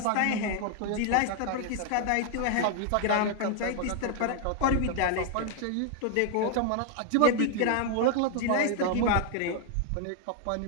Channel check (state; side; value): different; both; correlation 0.00